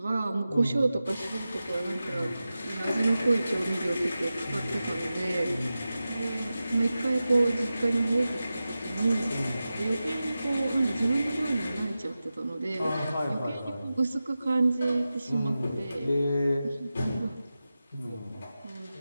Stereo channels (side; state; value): both; inverted; correlation -0.94